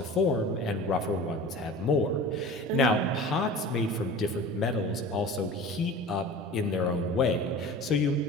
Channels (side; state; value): both; normal; correlation 0.38